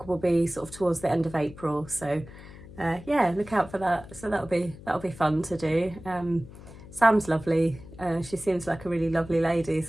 will be sort of towards the end of April. So yeah, look out for that. So that'll be fun to do. Sam's lovely. She seems like a really lovely lady,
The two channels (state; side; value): noise; left; hum, 17 dB below the sound